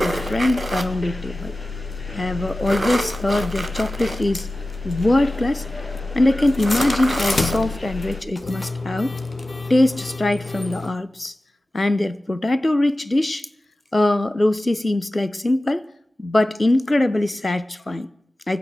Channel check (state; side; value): normal; both; correlation 0.95